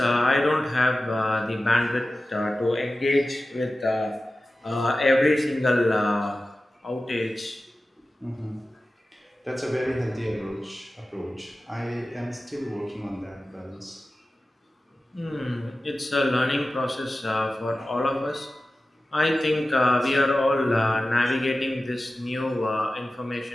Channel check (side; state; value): both; normal; correlation 0.95